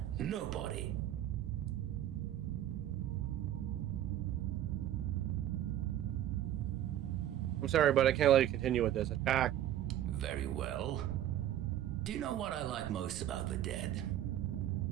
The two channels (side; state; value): left; quieter; 12.0 dB